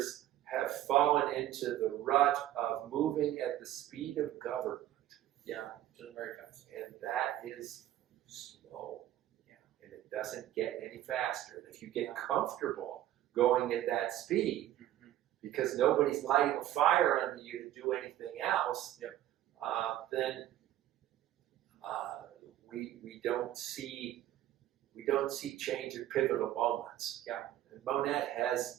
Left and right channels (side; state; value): left; quieter; 13.2 dB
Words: have fallen into the rut of moving at the speed of government. Yeah, just very fast. And that is slow. And it doesn't get any faster. If you get comfortable going at that speed, because nobody's lighting a fire under you to do anything else, then we don't see change at pivotal moments. And Monett